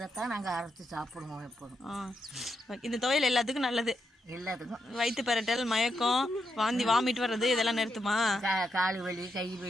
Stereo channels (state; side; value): normal; both; correlation 0.83